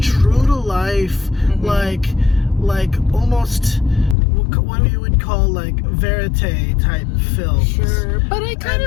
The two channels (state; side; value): drops out; right; at 4.2 s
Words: to life, like almost what you would call like verite type films. Sure, but